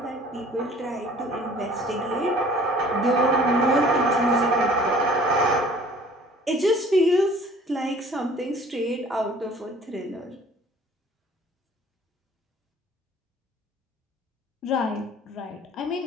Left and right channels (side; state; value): both; normal; correlation 0.51